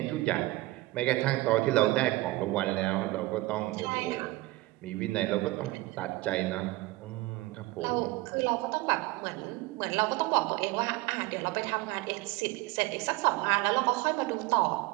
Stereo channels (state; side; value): quieter; left; 20.0 dB